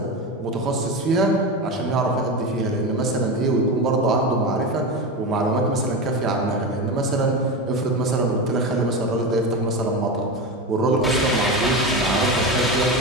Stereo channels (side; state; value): both; normal; correlation 0.20